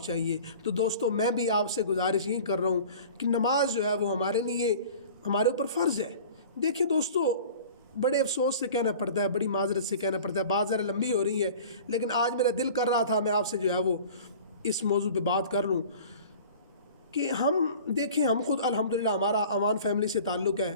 چاہیے۔ تو دوستو میں بھی آپ سے گزارش یہی کر رہا ہوں کہ نماز جو ہے وہ ہمارے لیے ہمارے اوپر فرض ہے۔ دیکھیں دوستو بڑے افسوس سے کہنا پڑتا ہے، بڑی معذرت سے کہنا پڑتا ہے، بات ذرا لمبی ہو رہی ہے، لیکن آج میرا دل کر رہا تھا میں آپ سے جو ہے وہ اس موضوع پہ بات کر لوں کہ ہم دیکھیں، ہم خود الحمدللہ ہمارا امان فیملی سے تعلق ہے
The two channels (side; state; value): both; inverted; correlation -0.42